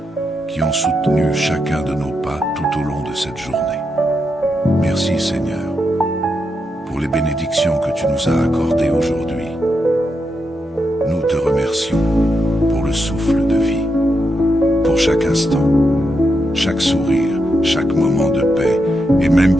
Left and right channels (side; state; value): both; normal; correlation 0.84